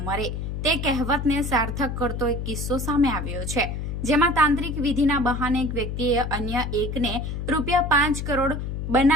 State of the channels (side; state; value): left; noise; hum, 4 dB below the sound